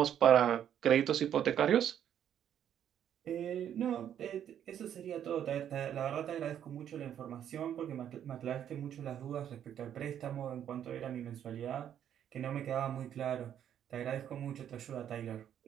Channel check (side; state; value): left; quieter; 9.8 dB